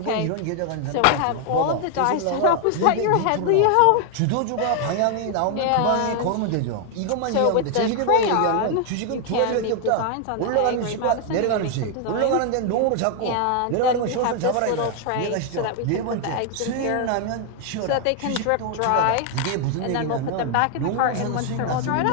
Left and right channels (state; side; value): different; both; correlation 0.00